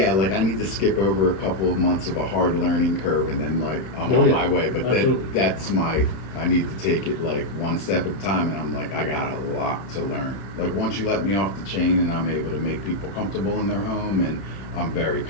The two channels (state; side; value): late; right; 31 ms